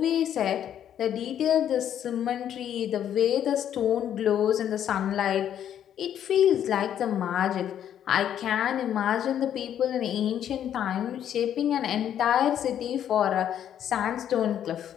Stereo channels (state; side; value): quieter; right; 10.0 dB